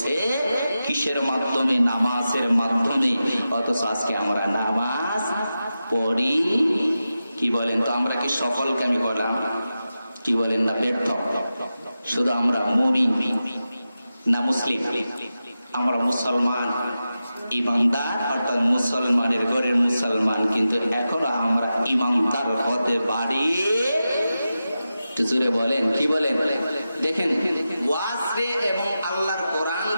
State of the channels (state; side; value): inverted; both; correlation -0.92